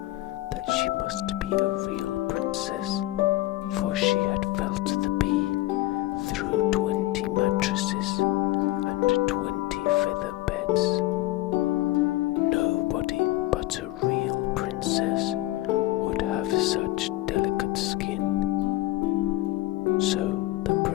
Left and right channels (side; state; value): right; quieter; 17.3 dB